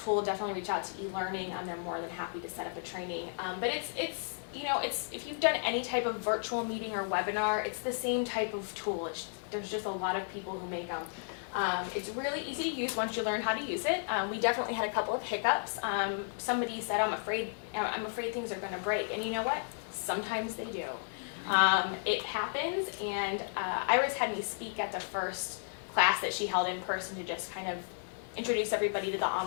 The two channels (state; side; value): silent; right; digital silence